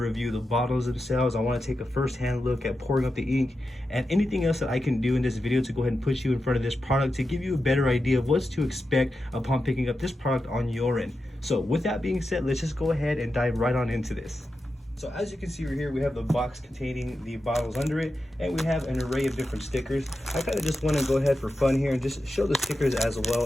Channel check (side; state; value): both; normal; correlation 0.90